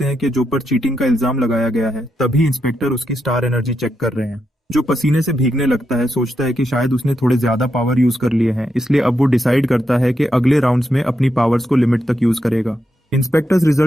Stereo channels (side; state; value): both; normal; correlation 0.84